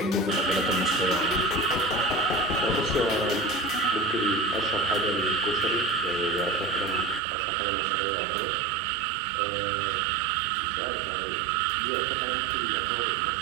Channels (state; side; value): drops out; left; at 7.2 s